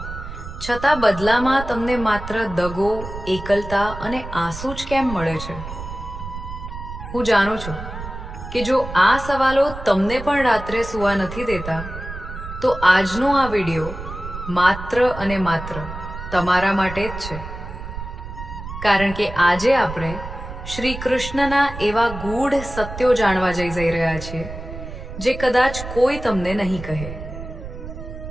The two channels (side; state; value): right; noise; rumble, 10 dB below the sound